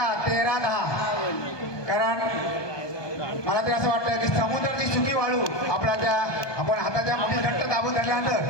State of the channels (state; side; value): late; right; 1.2 ms